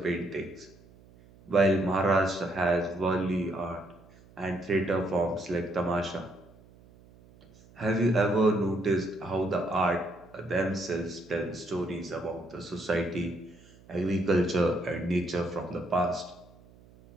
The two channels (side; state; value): right; noise; hum, 25 dB below the sound